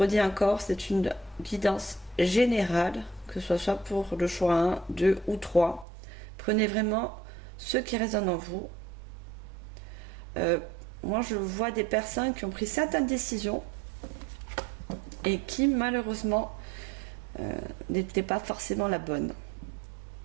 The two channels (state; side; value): drops out; left; at 5.9 s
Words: encore, c'est une guidance générale, que ce soit pour le choix 1, 2 ou 3. Prenez vraiment ce qui résonne en vous. Moi, je vois des personnes qui ont pris certaines décisions et qui, malheureusement, n'étaient pas forcément la bonne.